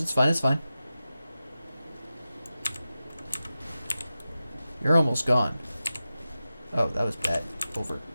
it's fine, it's fine. You're almost gone. Oh, that was bad.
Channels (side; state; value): both; inverted; correlation -0.93